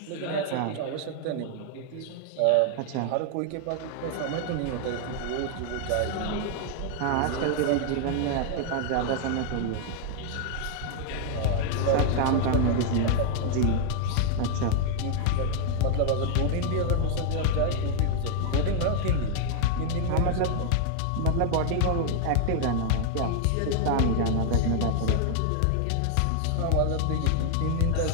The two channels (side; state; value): both; different; correlation 0.00